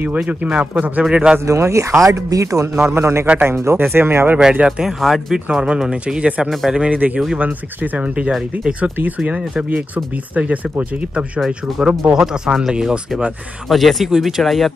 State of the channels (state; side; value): normal; both; correlation 0.90